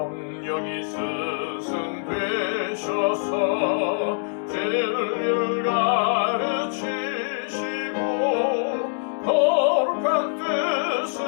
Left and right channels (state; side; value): silent; right; digital silence